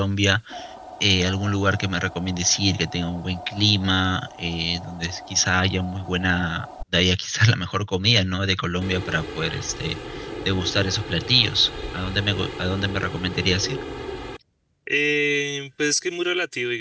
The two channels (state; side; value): identical; both; correlation 1.00